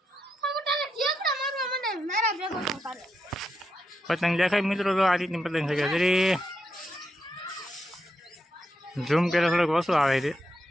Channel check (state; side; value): normal; both; correlation 0.83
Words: પતંગ દેખાય મિત્રો, તો આ રીતની પતંગ છે. જરી ઝૂમ કરે થોડોક ઓછું આવે છે.